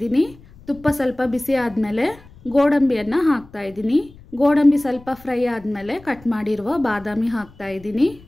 ತುಪ್ಪ ಸ್ವಲ್ಪ ಬಿಸಿ ಆದಮೇಲೆ ಗೋಡಂಬಿಯನ್ನು ಹಾಕ್ತಾ ಇದ್ದೀನಿ. ಗೋಡಂಬಿ ಸ್ವಲ್ಪ ಫ್ರೈ ಆದಮೇಲೆ ಕಟ್ ಮಾಡಿರುವ ಬಾದಾಮಿ ಹಾಕ್ತಾ ಇದ್ದೀನಿ.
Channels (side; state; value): left; noise; rumble, 23 dB below the sound